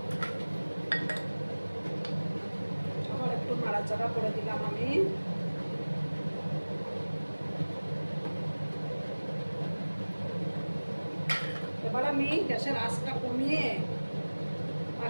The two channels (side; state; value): both; inverted; correlation -1.00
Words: আবার একটু নাড়াচাড়া করে দিলাম আমি। আমি গ্যাসের আঁচটা কমিয়ে